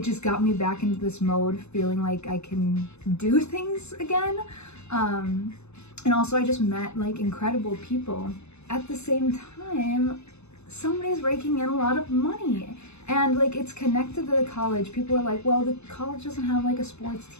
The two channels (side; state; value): right; late; 0.80 ms